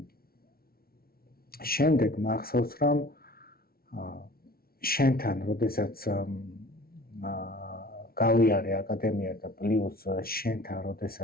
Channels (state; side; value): late; right; 0.44 ms